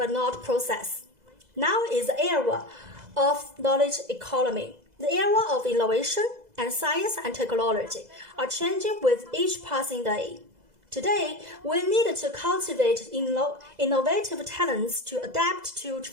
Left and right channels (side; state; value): left; late; 2.0 ms